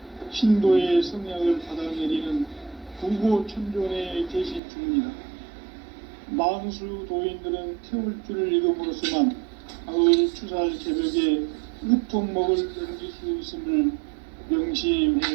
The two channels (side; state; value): left; drops out; at 4.6 s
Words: 신도의 성약을 받아내리는 구고천존의 계신 중입니다. 만수 도인들은 태울주를 읽음으로써만 가을 추살 개벽의 으통목을 넘길 수 있음을